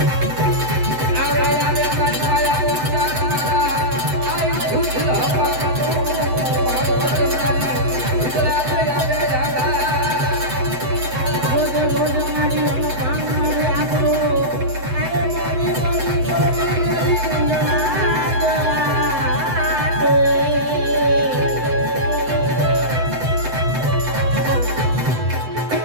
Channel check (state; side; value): late; left; 7.9 ms